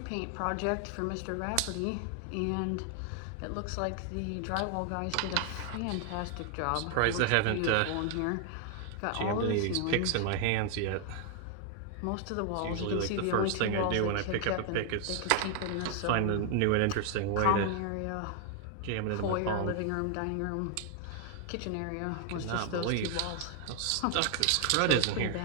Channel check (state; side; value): different; both; correlation 0.00